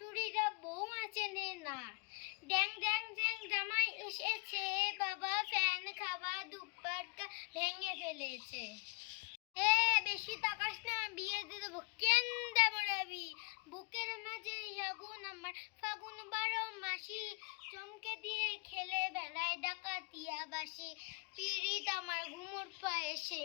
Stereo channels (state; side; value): quieter; right; 34.0 dB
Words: বৌমা চেনে না। ড্যাং ড্যাং ড্যাং জামাই এসেছে, বাবা ফ্যান খাওয়া দুপাট্টা ভেঙে ফেলেছে। বেশি তাকাস না, বিয়ে দিয়ে দেবো। কেন দেবো রাবি? বুকের মাঝে আগুন আমার, ফাগুন 12 মাসি, চমকে দিয়ে খেলে বেড়ায় ডাকাতিয়া বাসি। পিরিত আমার ঘুমোর পায়ে, সেই